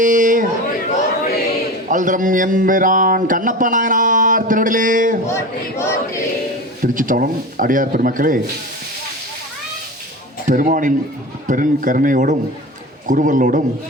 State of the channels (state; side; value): normal; both; correlation 0.29